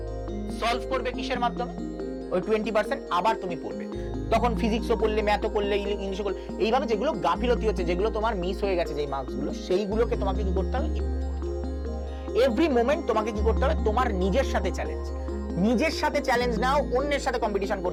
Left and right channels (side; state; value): both; identical; correlation 1.00